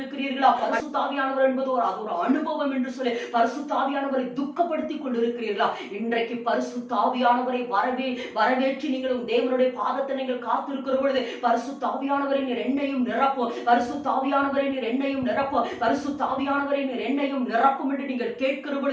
பரிசுத்த ஆவியானவர் என்பது அது ஒரு அனுபவம் என்று சொல்லி பரிசுத்த ஆவியானவரை துக்கப்படுத்தி கொண்டிருக்கிறீர்களா? இன்றைக்கு பரிசுத்த ஆவியானவரை வரவேற்று நீங்களும் தேவனுடைய பாதத்தை நீங்கள் காத்திருக்கிற பொழுது பரிசுத்த ஆவியானவரை நீர் என்னையும் நிரப்ப நிரப்பும், பரிசுத்த ஆவியானவரே நீர் என்னையும் நிரப்பும், பரிசுத்த ஆவியானவரே நீர் என்னையும் நிரப்பும் என்று நீங்கள் கேட்கிற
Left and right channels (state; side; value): identical; both; correlation 1.00